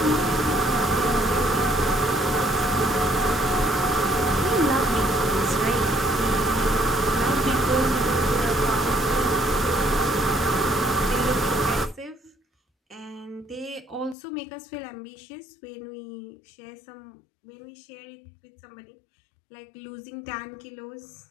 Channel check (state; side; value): drops out; right; at 14.2 s